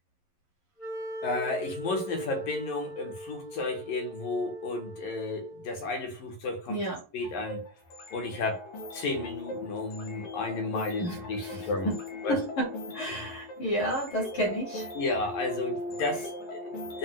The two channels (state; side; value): late; right; 11 ms